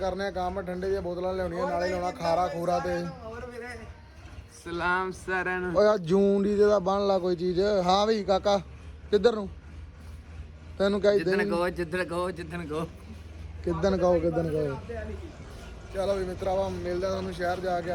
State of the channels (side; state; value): both; identical; correlation 1.00